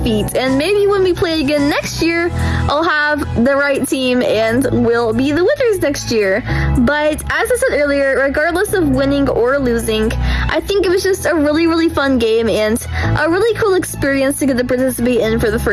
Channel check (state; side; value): identical; both; correlation 1.00